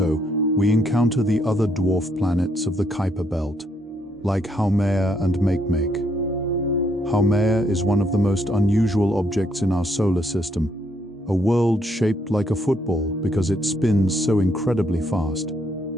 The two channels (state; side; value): normal; both; correlation 0.73